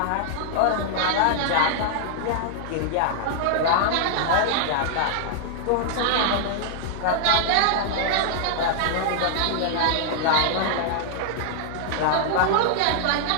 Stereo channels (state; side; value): different; both; correlation -0.01